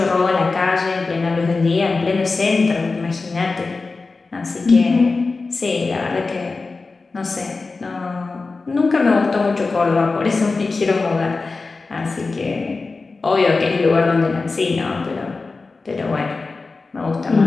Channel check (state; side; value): quieter; right; 3.9 dB